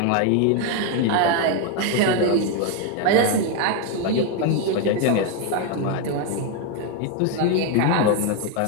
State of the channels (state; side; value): different; both; correlation 0.01